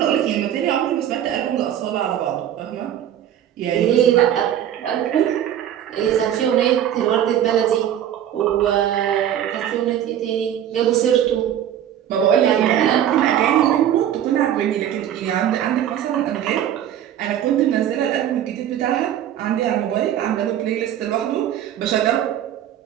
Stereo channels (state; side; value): quieter; left; 10.7 dB